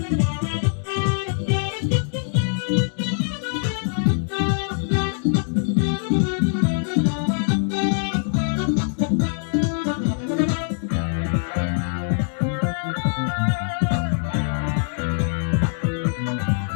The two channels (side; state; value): right; silent; 63 dB below the other